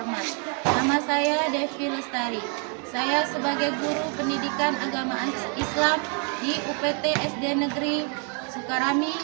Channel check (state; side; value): quieter; left; 38.6 dB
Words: nama saya Devi Lestari. Saya sebagai guru pendidikan agama Islam di UPT SD Negeri Sukarami,